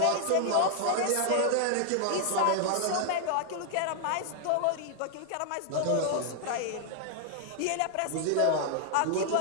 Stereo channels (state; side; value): different; both; correlation 0.00